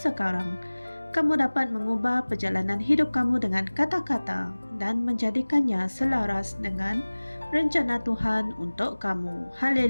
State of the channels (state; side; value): inverted; both; correlation -1.00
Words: kamu dapat mengubah perjalanan hidup kamu dengan kata-kata dan menjadikannya selaras dengan rencana Tuhan untuk kamu.